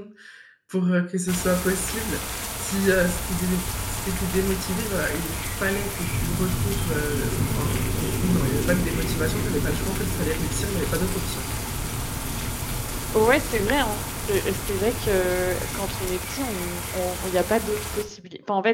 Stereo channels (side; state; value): both; identical; correlation 1.00